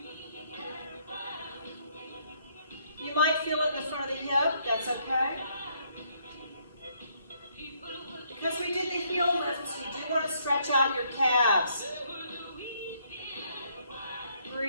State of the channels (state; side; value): inverted; both; correlation -0.69